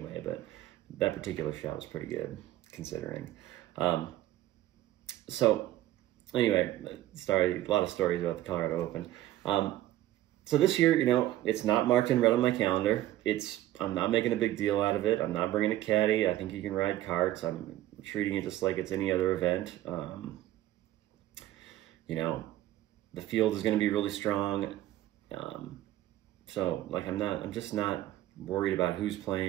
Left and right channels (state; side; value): quieter; left; 14.4 dB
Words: But that particular shot was pretty good considering. So anyway, a lot of stories about the Colorado Open. So this year, you know, it's not marked in red on my calendar. I'm not making a big deal out of it. I'm not bringing a caddy. I think you can ride carts. I'm treating it just like it's any other event. You know, the field is going to be really strong. So like, I'm just not worried about who's